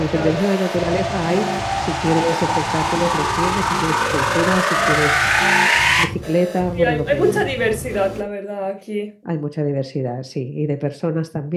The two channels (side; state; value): both; identical; correlation 1.00